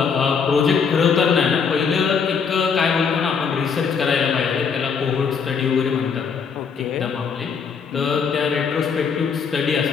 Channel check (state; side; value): quieter; right; 6.1 dB